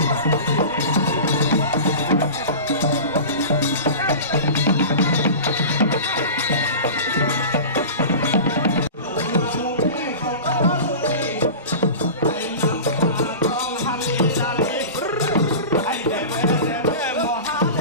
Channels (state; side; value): inverted; both; correlation -0.32